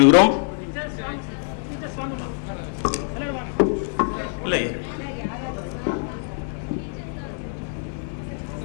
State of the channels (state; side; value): silent; right; 62 dB below the other